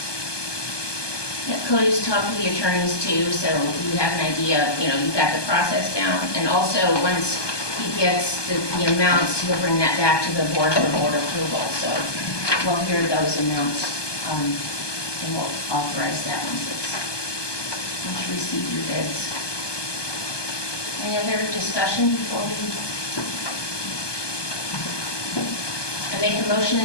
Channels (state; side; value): late; right; 1.2 ms